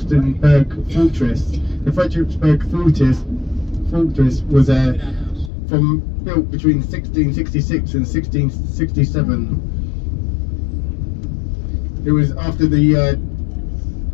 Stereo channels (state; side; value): drops out; right; at 5.5 s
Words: Fortress. The Frederiksberg Fortress was built between 1666 and 1667. It was after the